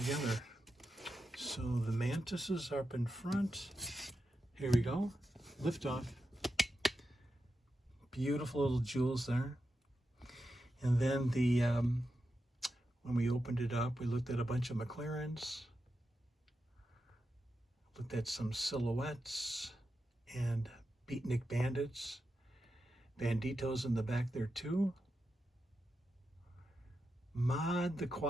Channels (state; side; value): normal; both; correlation 0.88